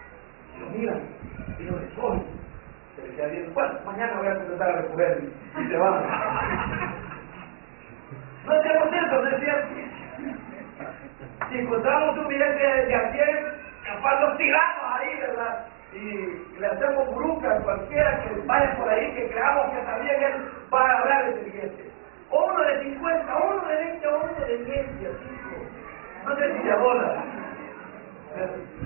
Y lo miran y lo recogen. Se le queda viendo, bueno, mañana voy a empezar a recoger y se van. No hacemos eso, ¿no es cierto? Si encontramos un billete de $100, capaz los tiramos ahí, ¿verdad? Y le hacemos bruca a cualquiera que vaya por ahí, que creamos que también él va a agarrar ese billete. O uno de 50, uno de 20, o uno de 10, así. No sé si se abola.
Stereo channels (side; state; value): left; silent; digital silence